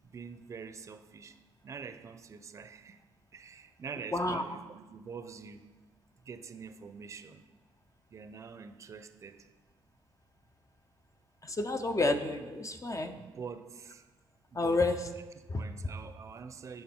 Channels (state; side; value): normal; both; correlation 0.72